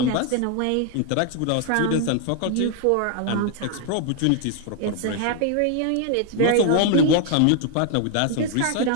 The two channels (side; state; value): both; different; correlation 0.00